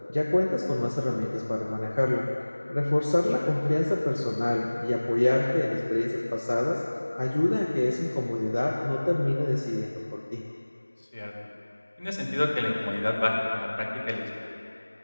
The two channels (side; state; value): both; inverted; correlation -1.00